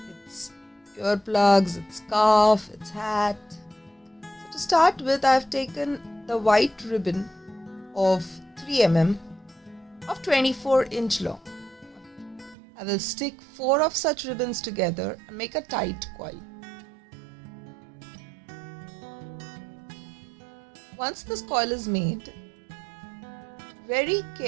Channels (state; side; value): drops out; left; at 12.6 s